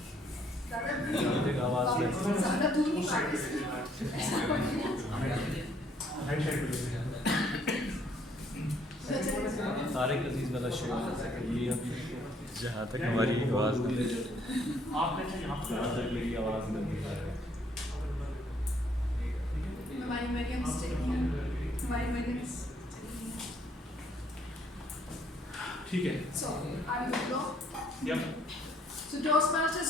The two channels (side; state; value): both; normal; correlation 0.66